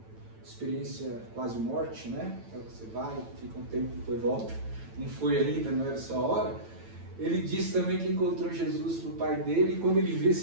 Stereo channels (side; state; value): left; late; 9.0 ms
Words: experiência quase morte, né? Você vai, fica um tempo, depois volta. Não foi ainda, não era essa hora. Ele disse também que encontrou Jesus pro pai dele, e quando ele viu